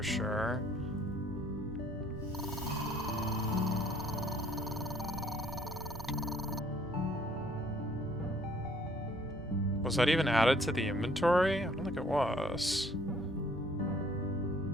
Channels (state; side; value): normal; both; correlation 0.60